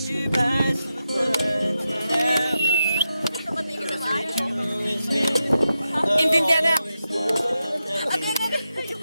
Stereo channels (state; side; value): inverted; both; correlation -0.89